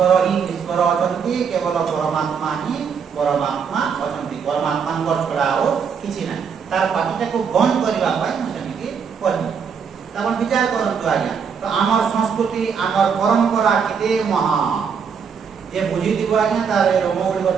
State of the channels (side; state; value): left; quieter; 6.5 dB